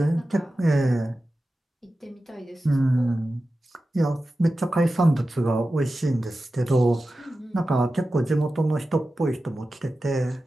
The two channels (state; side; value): normal; both; correlation 0.94